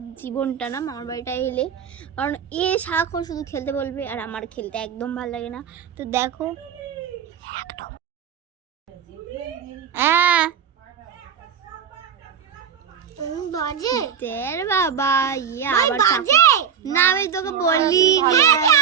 জীবনটা না, মামার বাড়িটা এলে, কারণ এ সারাক্ষণ শুধু খেলতে বলবে আর আমার খেলতে একদম ভালো লাগে না। তো দেখো একদম হ্যাঁ বাজে তের বাবা ইয়ে আবার বাজে না, আমি তোকে বলিনি,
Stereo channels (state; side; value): quieter; left; 7.7 dB